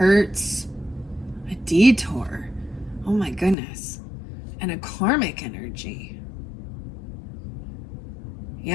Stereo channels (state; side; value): drops out; right; at 3.6 s